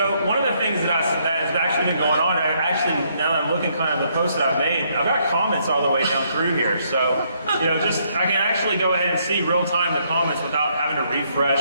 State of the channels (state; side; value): inverted; both; correlation -0.71